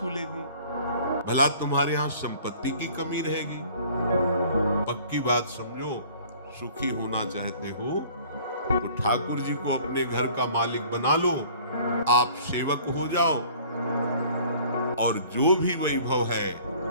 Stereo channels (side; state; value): both; inverted; correlation -0.51